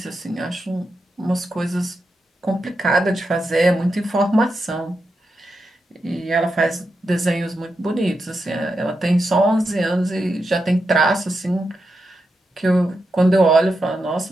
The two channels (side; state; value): both; normal; correlation 0.87